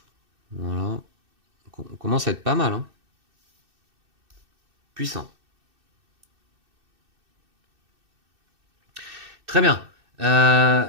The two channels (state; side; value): late; left; 2.6 ms